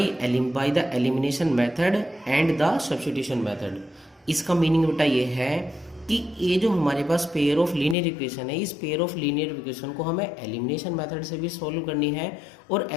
the elimination method and the substitution method. इसका मीनिंग बेटा ये है कि ये जो हमारे पास पेयर ऑफ लीनियर इक्वेशन है, इस पेयर ऑफ लीनियर इक्वेशन को हमें एलिमिनेशन मेथड से भी सॉल्व करनी है और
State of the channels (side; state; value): right; drops out; at 8.0 s